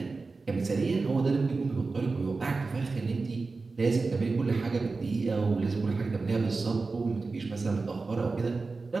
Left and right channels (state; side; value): quieter; left; 4.0 dB